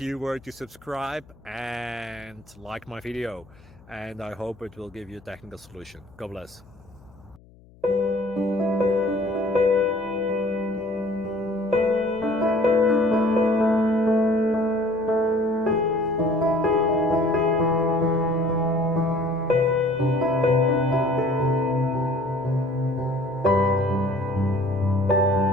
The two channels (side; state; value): left; noise; hum, 26 dB below the sound